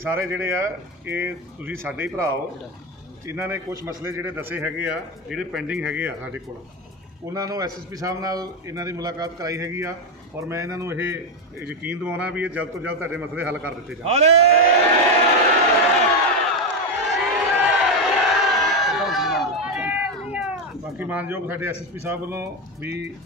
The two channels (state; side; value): normal; both; correlation 0.10